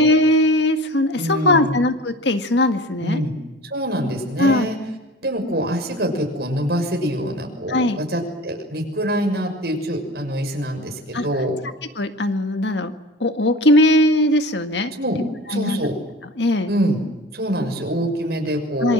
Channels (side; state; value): both; normal; correlation 0.38